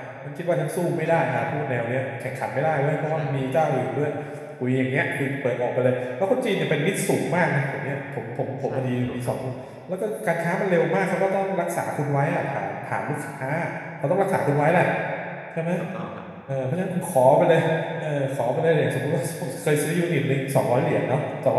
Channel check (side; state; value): both; identical; correlation 1.00